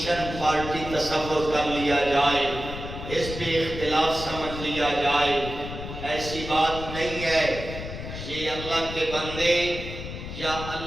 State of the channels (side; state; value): left; noise; rumble, 9 dB below the sound